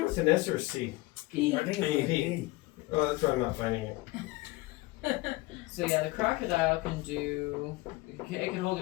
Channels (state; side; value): quieter; right; 21.2 dB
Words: with an S or a C? P. I think it's a P. Oh, that's why I'm not finding it. So yeah, the crocodile can do. It can hold